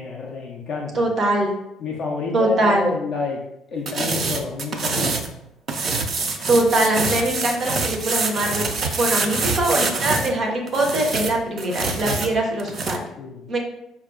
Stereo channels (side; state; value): both; normal; correlation 0.69